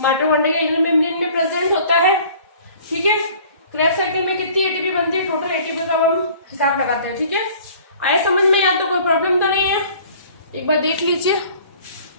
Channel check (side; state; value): both; inverted; correlation -0.50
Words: माइटोकॉन्ड्रिया के इनर मेम्ब्रेन में प्रेजेंट होता है, ठीक है। क्रेब्स साइकिल में कितनी ATP बनती है? टोटल ATP का हम हिसाब लगाते हैं, ठीक है। आए समझ में? यहाँ तो कोई प्रॉब्लम तो नहीं है, एक बार देख लीजिए,